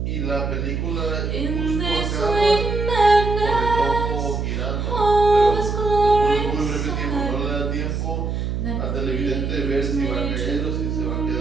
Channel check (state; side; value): noise; right; hum, 2 dB below the sound